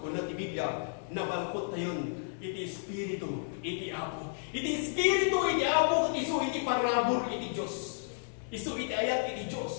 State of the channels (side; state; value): right; silent; digital silence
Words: na ti Biblia, nabalkot tayo, iti Espiritu, iti Apo. Iti Espiritu, iti Apo, isu iti parabor, iti Diyos. Isu iti ayat, iti